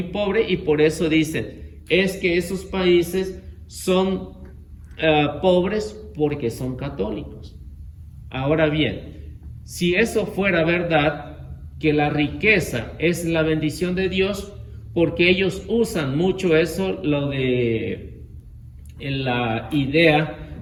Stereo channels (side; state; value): both; identical; correlation 1.00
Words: pobre y por eso dicen, es que esos países son pobres porque son católicos. Ahora bien, si eso fuera verdad, que la riqueza es la bendición de Dios, porque ellos usan mucho eso, lo de la idea